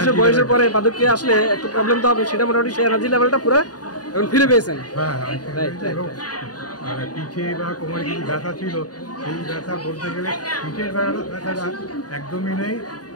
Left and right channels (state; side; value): late; right; 0.68 ms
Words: বয়সের পরে বার্ধক্যে আসলে একটু প্রবলেম তো হবে, সেটা মোটামুটি সেই এনার্জি লেভেলটা পুরো এখন ফিরে পেয়েছেন। হ্যাঁ, আর পিঠে বা কোমরে কিছু ব্যথা ছিল, সেই ব্যথা বলতে গেলে পিঠের ব্যথাটা একদমই নেই।